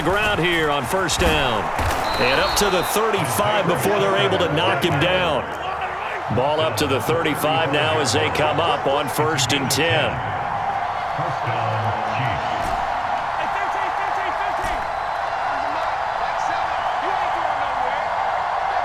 ground here on first down. And up to the 35 before they're able to knock him down. Ball up to the 35 now as they come up on 1st and 10.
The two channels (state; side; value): identical; both; correlation 1.00